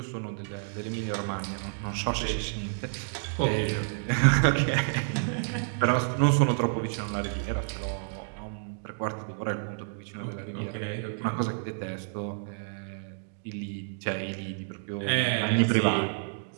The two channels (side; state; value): left; silent; digital silence